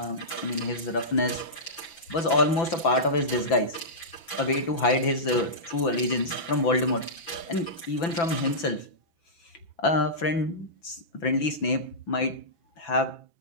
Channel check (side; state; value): right; late; 6.0 ms